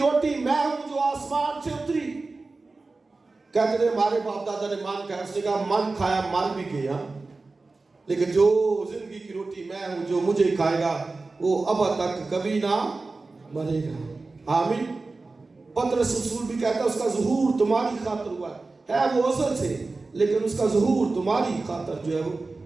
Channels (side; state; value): left; quieter; 3.6 dB